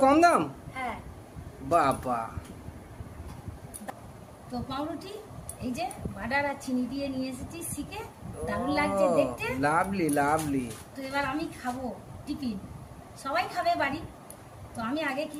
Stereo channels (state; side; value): identical; both; correlation 1.00